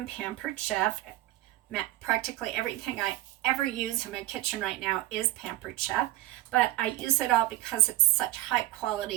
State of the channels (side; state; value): left; quieter; 16.7 dB